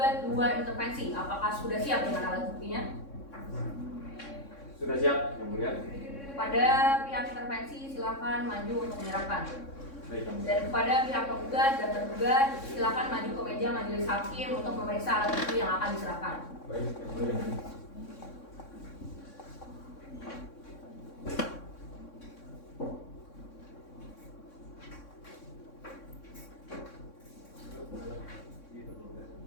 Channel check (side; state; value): right; late; 3.6 ms